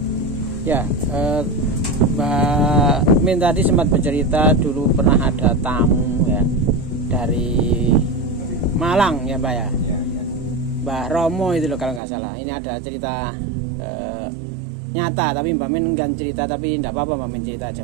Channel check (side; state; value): left; drops out; at 12.0 s